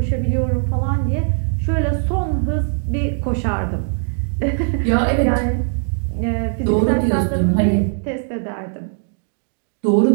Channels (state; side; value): silent; left; 66 dB below the other